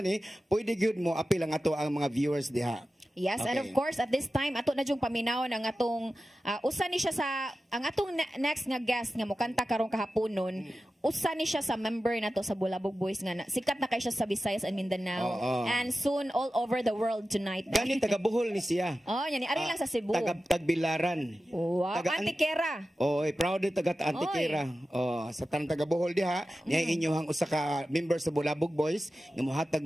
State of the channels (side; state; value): both; normal; correlation 0.94